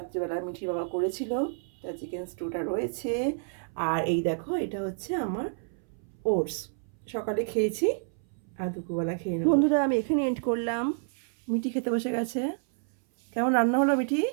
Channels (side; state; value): left; silent; 59 dB below the other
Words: মিঠির বাবা করেছিল, তা চিকেন স্টুটা রয়েছে। আর এই দেখো, এটা হচ্ছে আমার ওটস, সকালে খেয়েছি আর দুপুরবেলা খেয়ে নেব। বন্ধুরা আমি এখানে এন্ড করলাম, মিঠি খেতে বসে গেছে। কেমন রান্না হলো মিঠি?